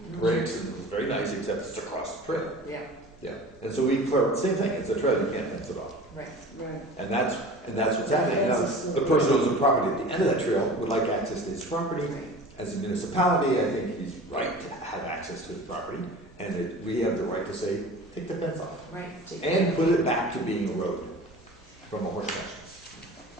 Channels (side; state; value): left; noise; hum, 29 dB below the sound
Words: breaks, and it was very nice, except it's across the trail. Yeah, Yeah, and so we, same thing, it's a trail, you can't fence it off. right. Right. And that's what's happening. Now, That's a the person who owns the property at the end of that trail would like access to his property. As a municipality, I think he's right to have access to his property, and we have the right to say, take the fence off, Right. and put it back to being a road from a horse